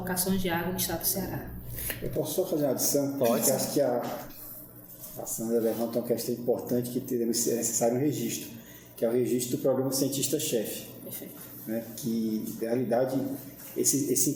de água no estado do Ceará. Eu posso só fazer uma adição? Pode. Eu acho que a Sandra levanta uma questão importante que deve ser necessário um registro, que é o registro do programa Cientista-Chefe. Perfeito. Né? Que, na realidade,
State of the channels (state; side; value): identical; both; correlation 1.00